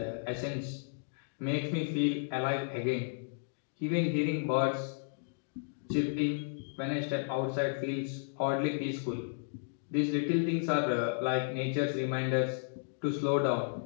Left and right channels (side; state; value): right; silent; digital silence